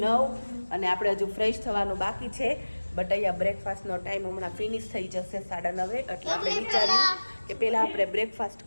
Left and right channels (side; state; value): both; inverted; correlation -1.00